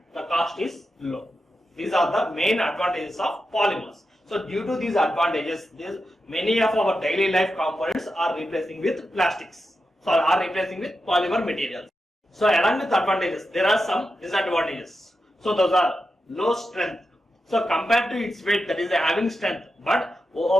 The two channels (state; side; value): normal; both; correlation 0.89